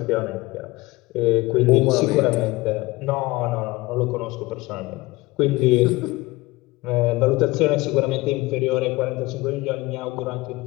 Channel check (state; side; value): quieter; right; 20.9 dB